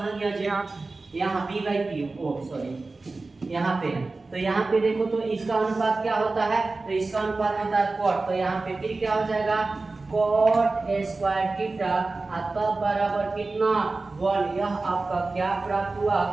गया जी? यहाँ p/p, ओ सॉरी यहाँ पे है। तो यहाँ पे देखो तो इसका अनुपात क्या होता है? तो इसका अनुपात होता है cot। तो यहाँ पे फिर क्या हो जाएगा? cot स्क्वायर थीटा तब बराबर कितना? 1। यह आपका क्या प्राप्त हुआ?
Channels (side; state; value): left; quieter; 3.5 dB